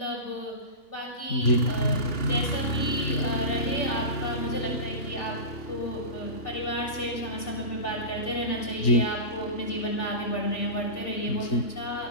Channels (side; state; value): right; late; 3.4 ms